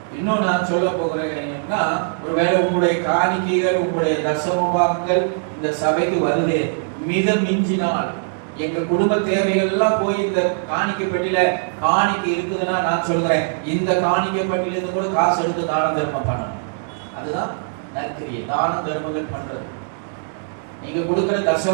இன்னும் நான் சொல்ல போகிறேன்னா, ஒருவேளை உங்களுடைய காணிக்கைகள், உங்களுடைய தசமபாகங்கள் இந்த சபைக்கு வருது, மிதம் மிஞ்சினால், எங்க குடும்ப தேவைகள் எல்லாம் போய் இந்த காணிக்கை பெட்டியில காணிக்கை இருக்குதுன்னா நான் சொல்றேன், இந்த காணிக்கை பெட்டியில இருந்து கூட காசு எடுத்து தான தர்மம் பண்ணணும். அதுதான் நற்கிரியை, தான தர்மங்கள் பண்றது. நீங்க கொடுக்கிற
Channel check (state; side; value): silent; left; digital silence